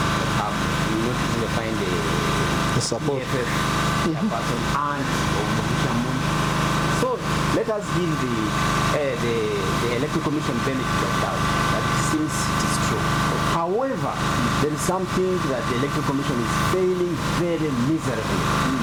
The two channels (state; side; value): identical; both; correlation 1.00